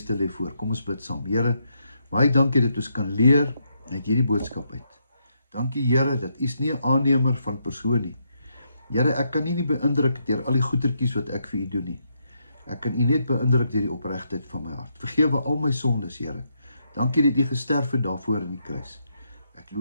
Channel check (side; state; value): both; inverted; correlation -0.79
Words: lê voor. Kom ons bid saam. Here, baie dankie dat ons kan leer uit hierdie boodskap uit. Dankie Here, dat U is nie 'n aannemer van persoon nie. Here, ek kan U nie beïndruk deur al die goetertjies wat ek vir U doen nie. Ek kan U net beïndruk deur die opregtheid van my hart. Vergewe al my sondes, Here. Dankie dat U gesterf het daarvoor in die kruis. Ek